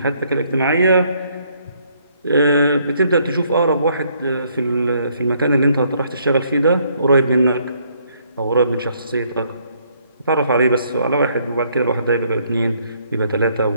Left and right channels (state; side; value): inverted; both; correlation -0.68